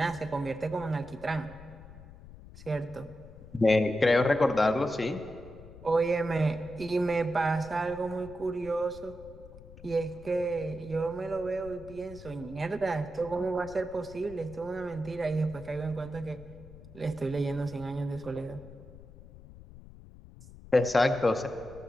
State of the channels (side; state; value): left; noise; rumble, 18 dB below the sound